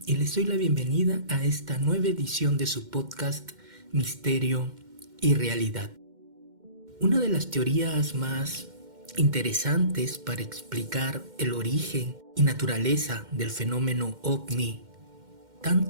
y les doy la bienvenida a esta nueva edición de su podcast Misterio y Realidad. Una de las teorías más interesantes para explicar el origen y naturaleza del fenómeno OVNI,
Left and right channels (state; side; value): late; left; 2.1 ms